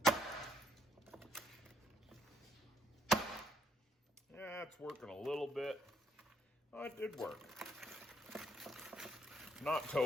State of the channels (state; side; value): normal; both; correlation 0.71